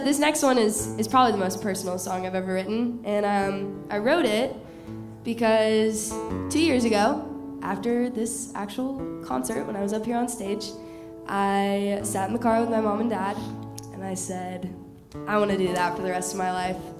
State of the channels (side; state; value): both; identical; correlation 1.00